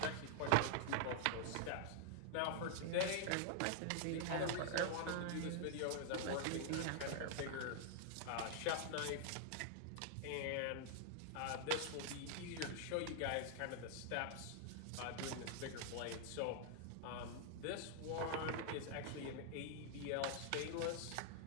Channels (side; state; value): both; different; correlation 0.00